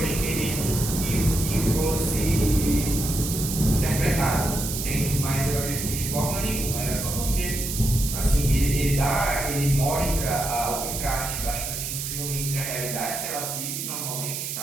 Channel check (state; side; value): noise; right; hiss, 4 dB below the sound